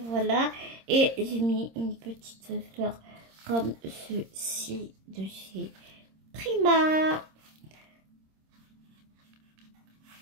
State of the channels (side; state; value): left; late; 26 ms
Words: voilà. Et j'ai mis une petite fleur comme ceci de chez Prima.